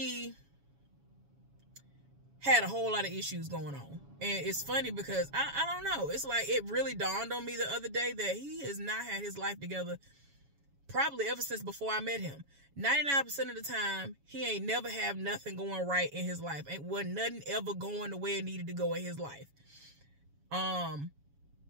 had a whole lot of issues going on. And it's funny because I don't know. It's like it really dawned on me the other day that he has not had his life together probably ever since before I met him. 99% of the time, he ain't never have nothing going right in his life. Ain't wasn't nothing ever going the way it needed to go in his life. I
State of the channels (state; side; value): late; left; 7.2 ms